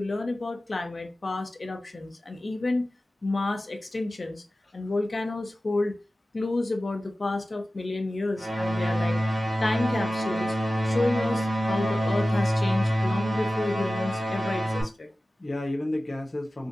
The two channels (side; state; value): both; normal; correlation 0.96